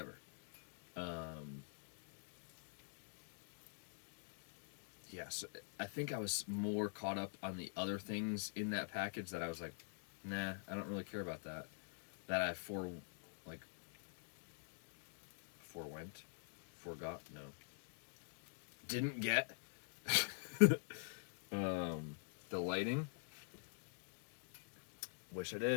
Yeah, so I think I was more caught up on the other things in that package that I was like, nah, I don't really care about that. That I forgot, no. Didn't get. The lighting. Wish I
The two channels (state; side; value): silent; right; digital silence